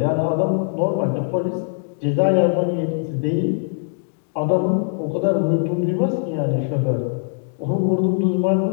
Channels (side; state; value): right; silent; digital silence